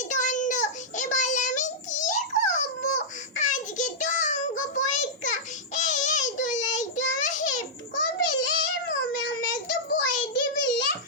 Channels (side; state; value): both; normal; correlation -0.10